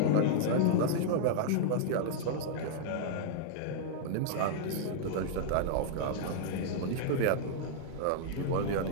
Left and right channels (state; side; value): different; both; correlation -0.01